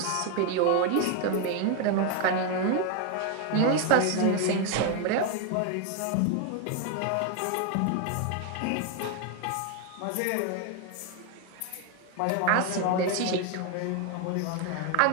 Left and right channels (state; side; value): different; both; correlation 0.01